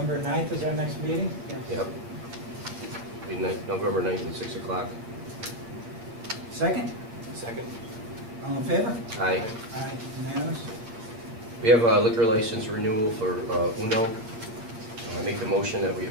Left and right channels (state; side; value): late; left; 8.8 ms